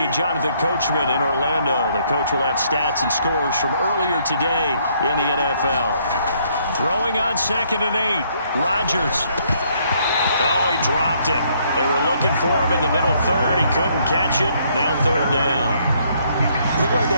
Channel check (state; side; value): inverted; both; correlation -0.68